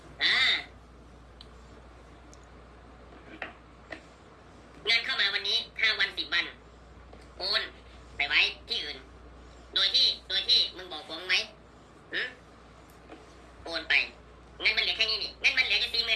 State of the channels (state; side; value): identical; both; correlation 1.00